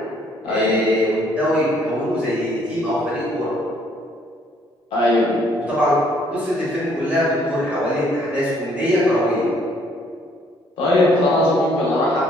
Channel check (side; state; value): both; normal; correlation 0.64